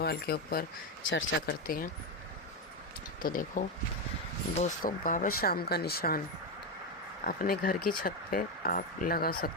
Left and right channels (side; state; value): both; normal; correlation 0.09